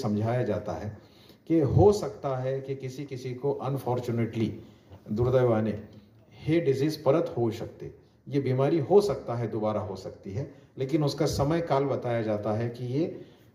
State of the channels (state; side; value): identical; both; correlation 1.00